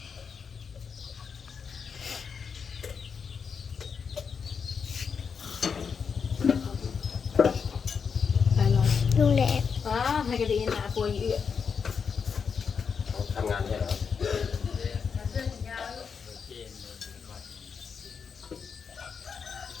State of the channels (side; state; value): right; quieter; 6.1 dB